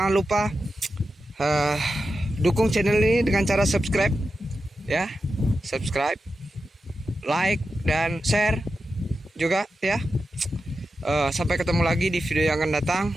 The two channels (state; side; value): normal; both; correlation 0.90